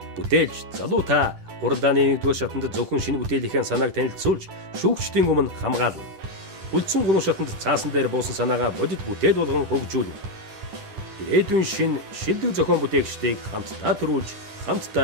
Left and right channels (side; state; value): left; late; 10 ms